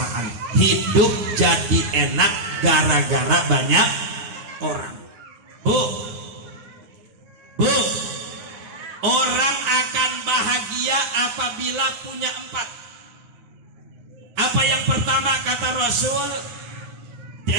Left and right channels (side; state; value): left; late; 9.5 ms